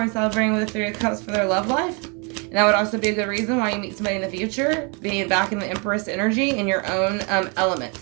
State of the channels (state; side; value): quieter; left; 33.1 dB